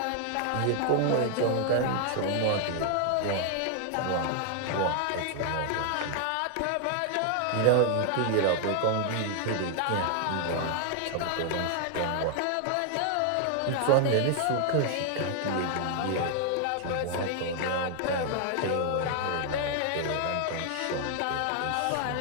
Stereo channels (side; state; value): both; different; correlation 0.00